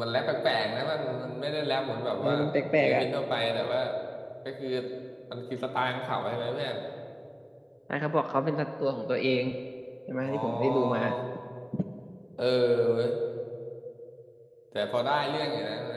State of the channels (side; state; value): both; identical; correlation 1.00